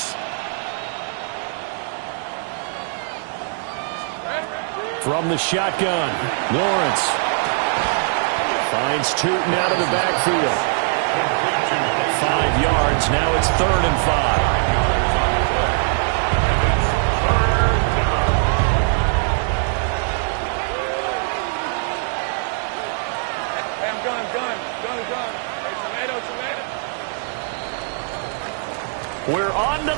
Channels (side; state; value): left; silent; 65 dB below the other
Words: From the shotgun, Lawrence finds Tootin out of the backfield. 5 yards. Now it's 3rd and 5. We're on to